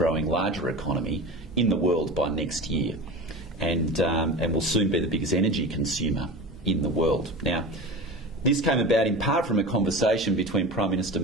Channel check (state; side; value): normal; both; correlation 0.30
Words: larger economy in the world by next year, and will soon be the biggest energy consumer in the world. Now, this came about in part from a conversation between Prime Minister